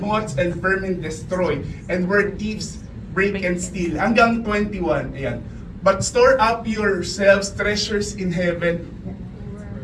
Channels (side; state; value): both; identical; correlation 1.00